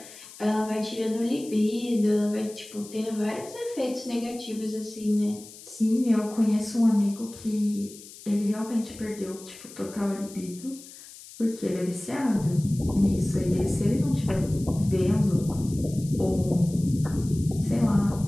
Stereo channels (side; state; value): left; noise; hiss, 18 dB below the sound